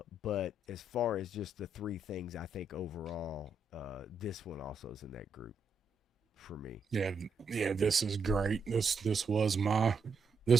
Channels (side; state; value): left; quieter; 3.2 dB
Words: as far as just the 3 things, I think overall, this one also is in that group for me. Yeah, this is great. This was